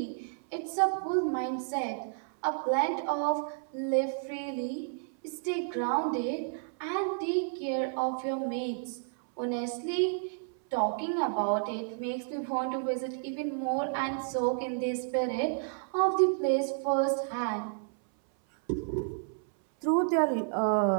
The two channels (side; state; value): left; silent; 57 dB below the other